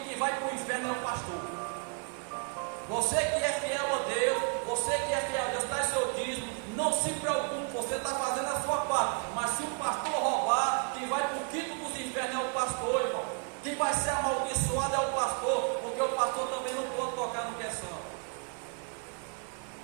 vai para o inferno é o pastor. Você que é fiel a Deus, você que é fiel a Deus, está em seu dízimo, não se preocupe, você está fazendo a sua parte. Mas se o pastor roubar, quem vai para o quinto dos infernos é o pastor, irmão. Quem vai ser amaldiçoado é o pastor, porque o pastor também não pode tocar no que é santo.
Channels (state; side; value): quieter; left; 38.7 dB